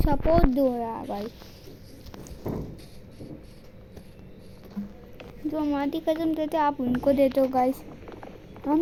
दो यार गाइस। जो हमारी कसम देते आप उनको देते हो गाइस, हम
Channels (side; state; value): both; identical; correlation 1.00